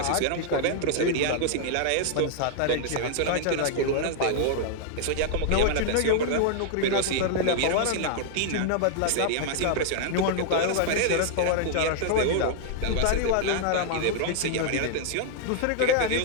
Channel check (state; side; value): different; both; correlation 0.00